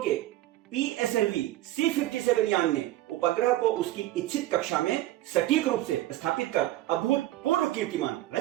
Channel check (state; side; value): quieter; left; 15.3 dB